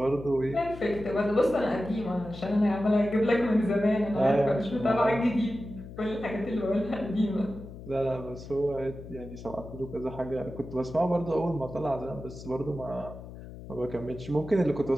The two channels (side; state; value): left; noise; hum, 13 dB below the sound